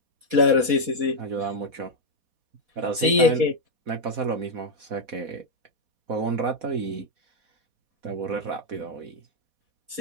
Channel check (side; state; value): left; late; 4.2 ms